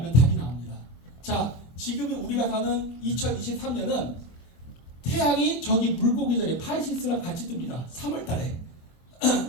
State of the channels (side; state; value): right; late; 24 ms